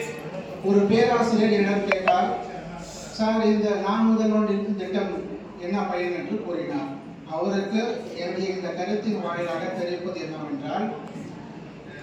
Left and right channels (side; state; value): both; identical; correlation 1.00